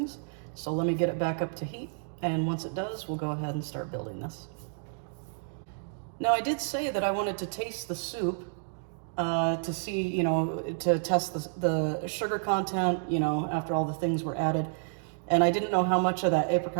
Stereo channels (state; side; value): silent; left; digital silence